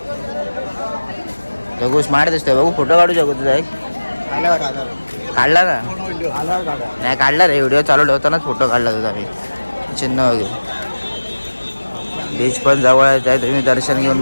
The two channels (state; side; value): inverted; both; correlation -1.00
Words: जगू स्मार्ट दिसतोय. बघू फोटो काढू जगू तुझा एक. काढला ना? नाही काढला रे, व्हिडिओ चालू ठेवतानाच फोटो काढला तुझा मी. चिन्ह वगैरे. बीच पण जवळच आहे, तुम्ही दर्शन घेऊन